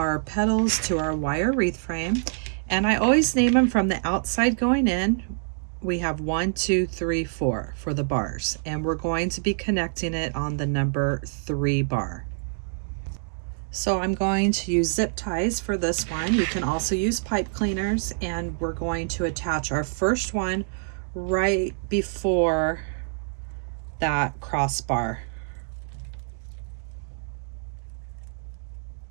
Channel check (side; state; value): left; silent; digital silence